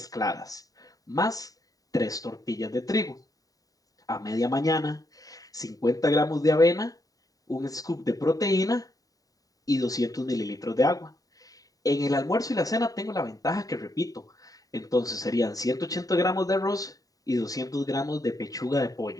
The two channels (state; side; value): late; right; 0.18 ms